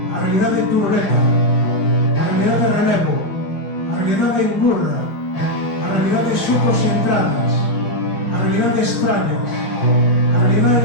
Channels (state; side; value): late; right; 5.0 ms